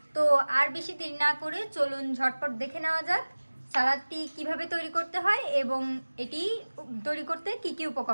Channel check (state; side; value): inverted; both; correlation -1.00